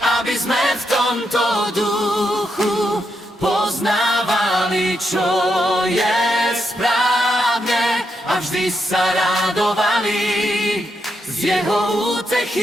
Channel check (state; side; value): normal; both; correlation 0.82